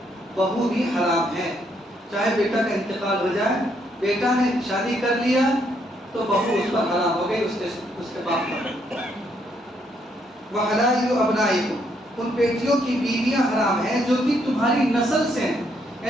بہو بھی حرام ہے، چاہے بیٹا کا انتقال ہو جائے، بیٹا نے شادی کر لیا تو بہو اس پر حرام ہو گئی، اس کے باپ پر۔ وَحَلَائِلُ أَبْنَائِكُمْ، ان بیٹیوں کی بیویاں حرام ہیں جو کہ تمہاری نسل سے ہیں،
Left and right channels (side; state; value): both; normal; correlation 0.73